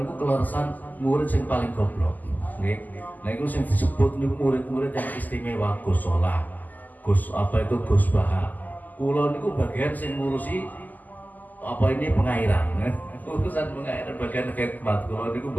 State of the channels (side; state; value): right; late; 0.083 ms